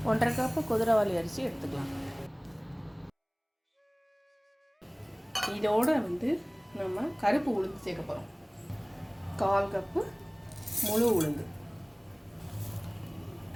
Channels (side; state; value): both; identical; correlation 1.00